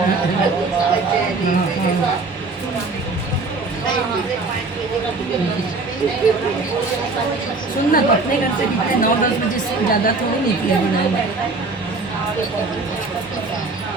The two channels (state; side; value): quieter; left; 3.6 dB